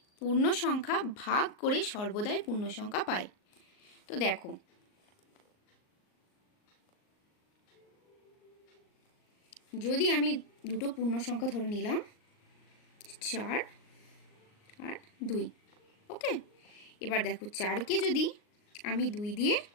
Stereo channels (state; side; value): late; right; 38 ms